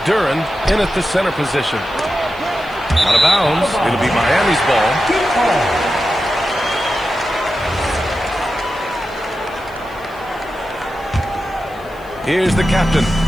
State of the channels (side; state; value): left; noise; hiss, 27 dB below the sound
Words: in at the center position. Out of bounds. It'll be Miami's ball. Here's the captain.